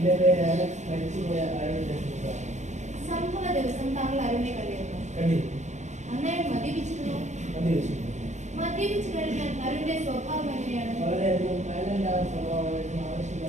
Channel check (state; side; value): late; left; 0.34 ms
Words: പേര് അലക്സ്, മരിച്ചുപോയ അരുണിന്റെ സുഹൃത്താണ്. സംഭവ ദിവസം താങ്കൾ അരുണിനെ കണ്ടിരുന്നു. കണ്ടിരുന്നു. അന്നേരം മദ്യപിച്ചിരുന്നു. മദ്യപിച്ചു. മദ്യപിച്ചു കഴിഞ്ഞാൽ അരുണിന്റെ സ്വഭാവം എങ്ങനെയാണ്? വളരെയധികം വയലന്റ് ആയ സ്വഭാവമായിരുന്നു.